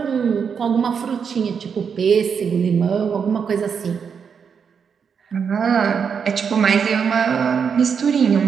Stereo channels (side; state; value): left; quieter; 6.6 dB